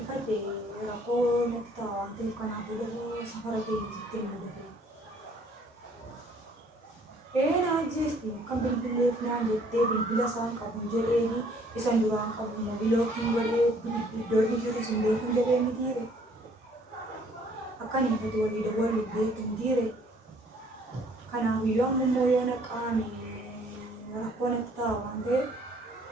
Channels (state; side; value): normal; both; correlation 0.60